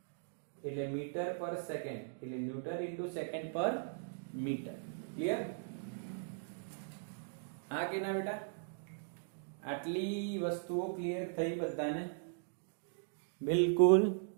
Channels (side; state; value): left; silent; digital silence